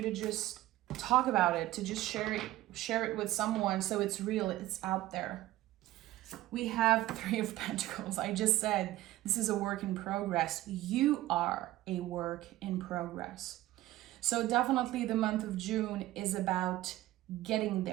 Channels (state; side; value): quieter; left; 15.9 dB